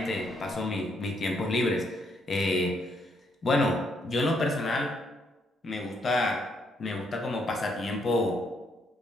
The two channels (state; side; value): normal; both; correlation 0.74